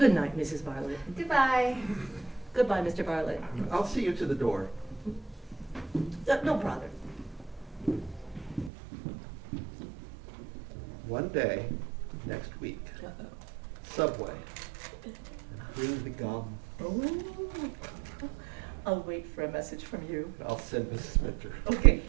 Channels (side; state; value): left; drops out; at 8.7 s